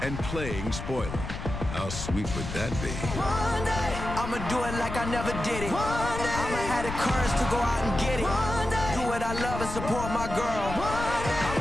and playing spoiler. How sweet would that be? One day, I'ma do it like I never did it. One day, I'ma have the courage to go out and get it. One day, do what I love and support my girl. One day,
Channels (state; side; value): noise; left; rumble, 7 dB below the sound